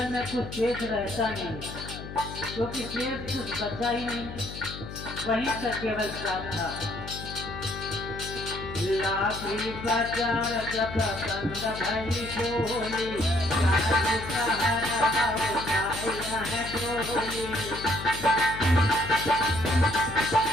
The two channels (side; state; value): left; noise; hum, 10 dB below the sound